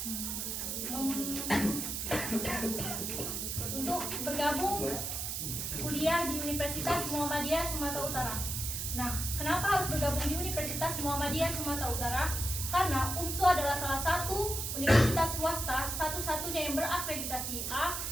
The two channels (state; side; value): noise; right; hiss, 3 dB below the sound